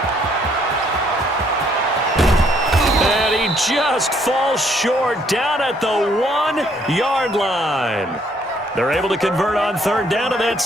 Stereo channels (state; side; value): normal; both; correlation 0.67